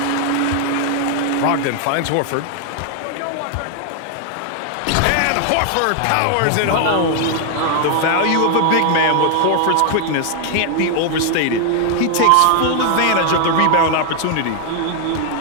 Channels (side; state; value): both; different; correlation 0.00